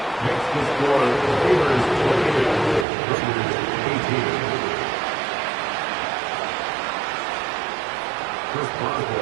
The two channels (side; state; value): left; drops out; at 2.9 s